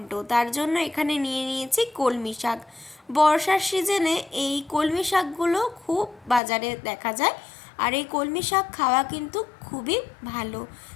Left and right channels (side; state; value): right; drops out; at 6.4 s